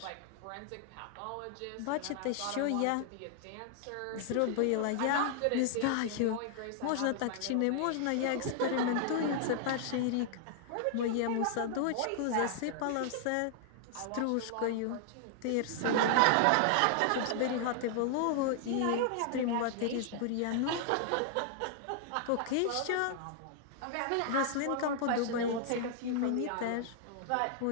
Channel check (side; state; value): both; different; correlation -0.01